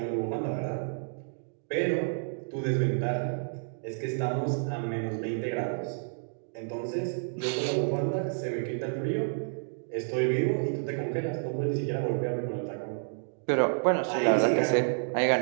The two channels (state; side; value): silent; left; digital silence